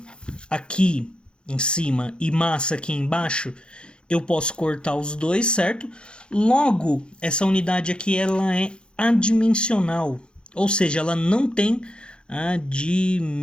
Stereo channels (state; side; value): late; right; 0.053 ms